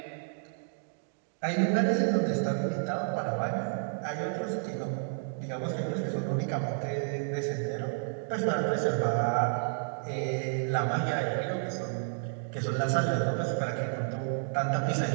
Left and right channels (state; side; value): silent; left; digital silence